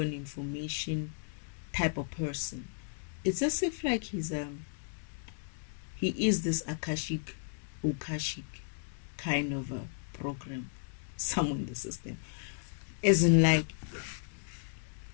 information type of person. It's as if like he is this Akashic kind of a program somewhere in the system. Isn't like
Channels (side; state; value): right; silent; 55 dB below the other